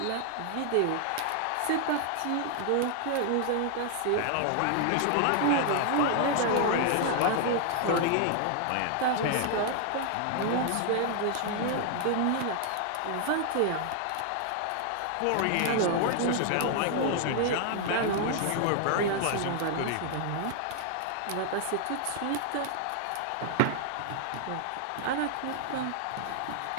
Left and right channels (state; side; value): different; both; correlation 0.00